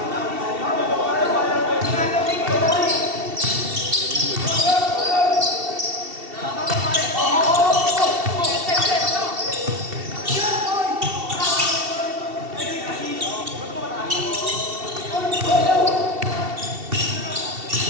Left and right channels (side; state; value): left; late; 2.7 ms